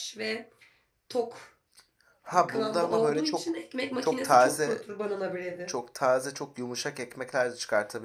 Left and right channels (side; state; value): both; identical; correlation 1.00